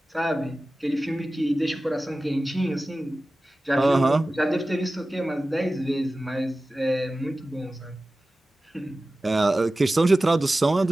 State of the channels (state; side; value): normal; both; correlation 0.96